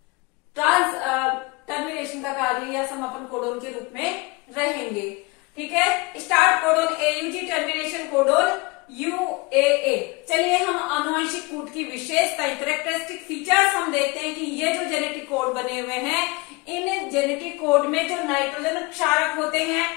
टर्मिनेशन का कार्य या समापन कोडोन के रूप में रहेंगे। ठीक है, start codon AUG, termination codon यूएए। चलिए हम आनुवंशिक कूट की विशेषताएं, कैरेक्टरिस्टिक फीचर्स हम देखते हैं कि ये जो जेनेटिक कोड बने हुए हैं, इन जेनेटिक कोड में जो नाइट्रोजन क्षारक होते हैं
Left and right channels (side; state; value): right; quieter; 24.7 dB